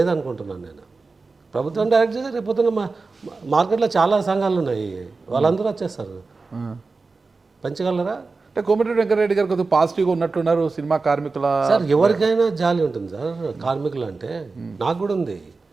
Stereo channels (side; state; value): left; quieter; 4.0 dB